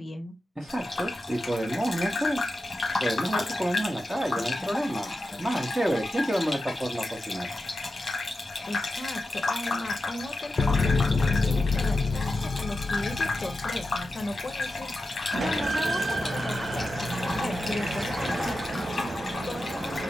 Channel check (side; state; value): both; normal; correlation 0.91